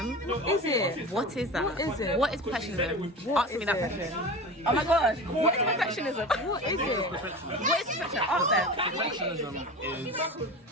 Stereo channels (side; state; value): both; normal; correlation 0.31